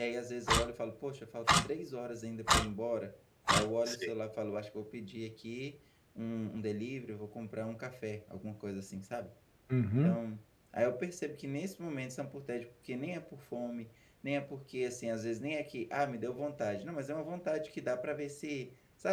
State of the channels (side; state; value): both; identical; correlation 1.00